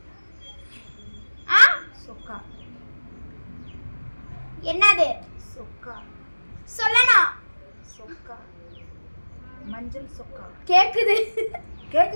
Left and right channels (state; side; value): inverted; both; correlation -1.00